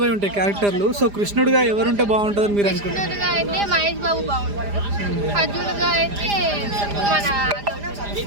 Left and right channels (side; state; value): left; late; 4.9 ms